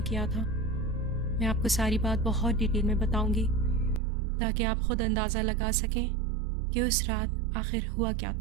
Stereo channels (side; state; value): left; drops out; at 4.0 s